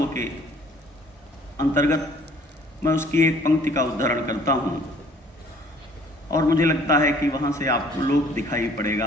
के अंतर्गत मैं उसकी एक पंक्ति का उद्धरण करता हूँ और मुझे लगता है कि वहाँ से आपको लोक दिखाई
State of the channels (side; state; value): both; normal; correlation 0.56